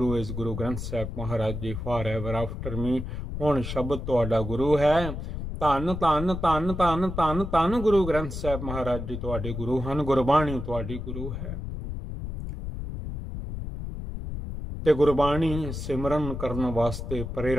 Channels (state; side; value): noise; left; rumble, 6 dB below the sound